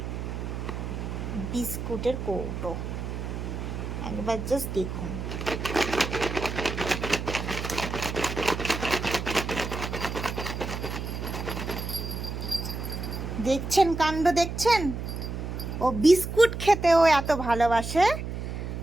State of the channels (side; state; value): right; noise; hum, 5 dB below the sound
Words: বিস্কুটের কৌটো। একবার জাস্ট দেখুন, দেখছেন কাণ্ড, দেখছেন? ও বিস্কুট খেতেও এত ভালোবাসে,